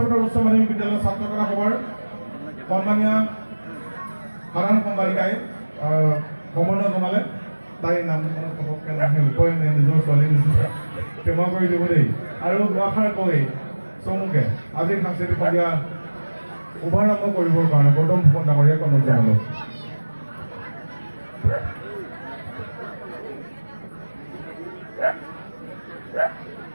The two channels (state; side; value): inverted; both; correlation -1.00